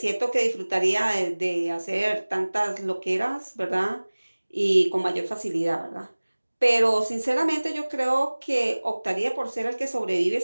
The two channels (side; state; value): both; inverted; correlation -1.00